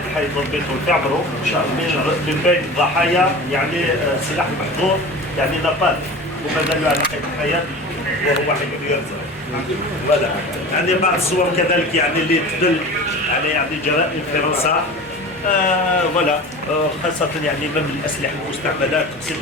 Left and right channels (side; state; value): both; normal; correlation 0.35